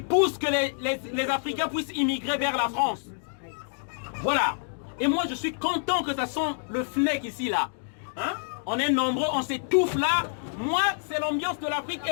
que les Africains puissent immigrer vers la France. Voilà. Et moi, je suis content que ça sent le FNEC ici, là. Hein? On est nombreux, on s'étouffe là. Moi, c'est l'ambiance de l'Afrique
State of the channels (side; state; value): right; silent; digital silence